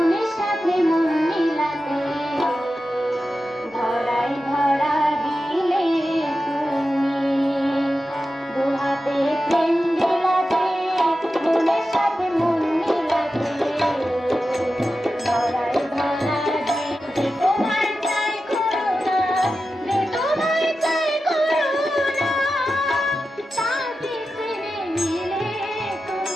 সাথে মন মিলাতে, ধরাই ধরা দিলে তুমি দুহাতে প্রেম বিলাতে, মনের সাথে মন মিলাতে, ধরাই ধরা দিলে তোমার চাই করুণা, রে তোমার চাই করুণা, তাতে ছেড়ে নিলে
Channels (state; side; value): normal; both; correlation 0.92